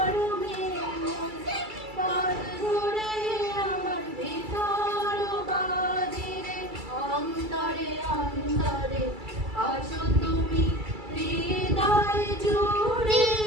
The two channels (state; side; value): late; left; 2.3 ms